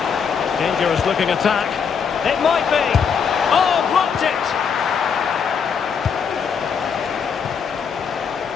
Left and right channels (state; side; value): quieter; right; 6.5 dB